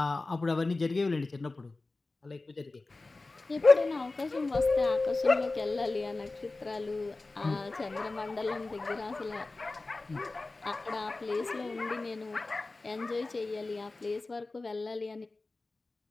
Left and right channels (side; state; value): right; quieter; 3.4 dB